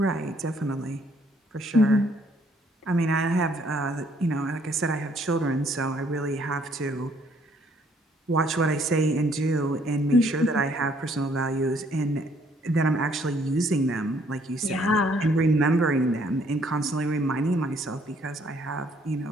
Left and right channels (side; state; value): both; normal; correlation 0.65